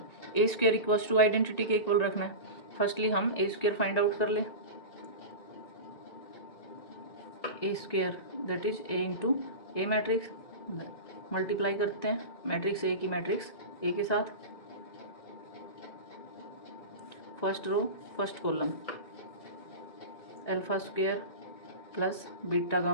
a square equals to identity के इक्वल रखना है. फर्स्टली हम a स्क्वायर फाइंड आउट कर ले. a square that is a into A matrix, multiply करते हैं मैट्रिक्स A की मैट्रिक्स A के साथ. First row first column alpha square plus beta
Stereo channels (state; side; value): late; right; 1.9 ms